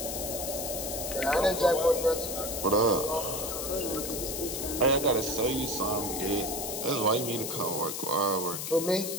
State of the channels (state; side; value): noise; left; hiss, 4 dB below the sound